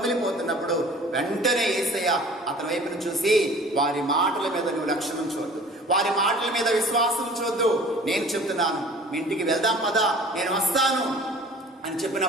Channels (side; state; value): both; normal; correlation 0.47